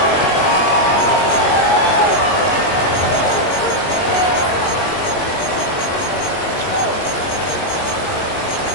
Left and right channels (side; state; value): right; late; 22 ms